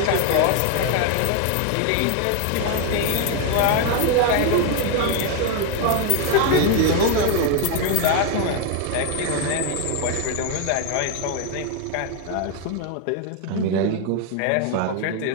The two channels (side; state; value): both; different; correlation 0.01